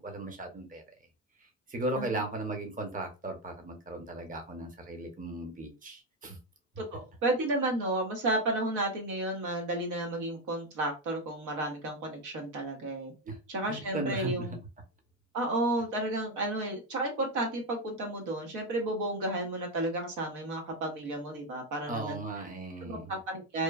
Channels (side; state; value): both; normal; correlation 0.09